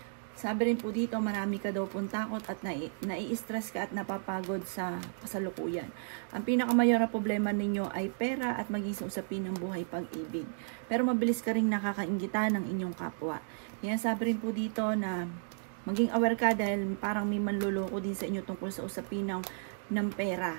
Sabi rin po dito, marami ka daw pong takot at nai-stress ka at napapagod sa kasalukuyan. Ang pinakamayor na problema ninyo ay pera at maging usapin ng buhay pag-ibig. Pero mabilis ka rin nakakainggitan ng inyong kapwa. Yan, sabi rin po dito na maging aware ka dahil parang may manluloko din sa inyo tungkol sa usapin ng pera.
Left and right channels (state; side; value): silent; left; digital silence